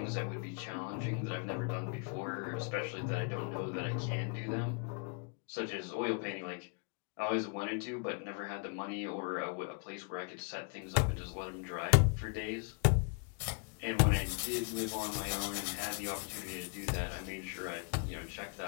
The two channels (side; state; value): right; quieter; 38.1 dB